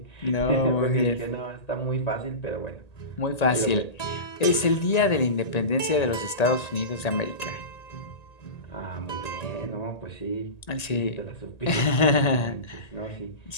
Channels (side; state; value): right; late; 1.8 ms